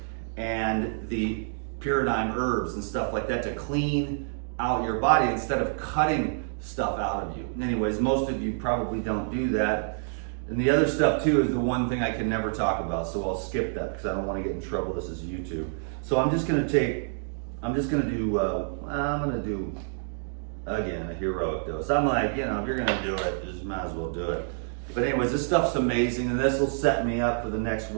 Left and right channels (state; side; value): silent; left; digital silence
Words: and the pyridine herbs and stuff like that to clean out your body instead of cutting stuff out of you. Anyways, most of you probably don't do that. And the other stuff too is the one thing I can never talk about, so I'll skip that because I don't want to get in trouble. This is YouTube. So I'm just gonna do again a heroic dose. I'm like, you know, if you're gonna do it, just might as well do it. But anyways, this stuff's amazing, and this will set me up for the next